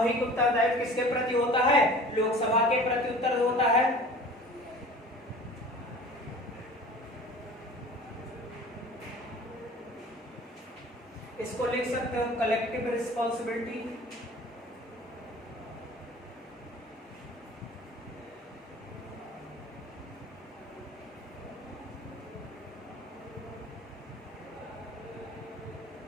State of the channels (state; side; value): normal; both; correlation 0.43